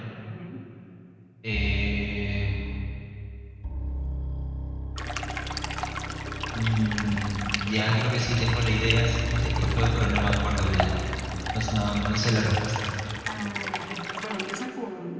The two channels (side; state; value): both; identical; correlation 1.00